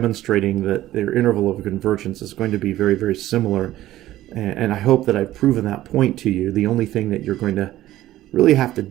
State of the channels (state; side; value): quieter; left; 14.6 dB